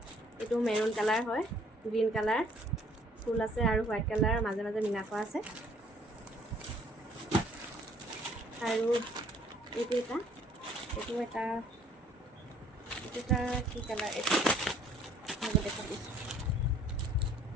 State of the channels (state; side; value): normal; both; correlation 0.60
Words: এইটো মেৰুন কালাৰ হয়, গ্ৰীণ কালাৰ ফুল আছে, আৰু হোৱাইট কালাৰ মাজে মিনা কৰা আছে। আৰু এইটো এটা কি কালাৰ, এইটো দেখাই দিছোঁ।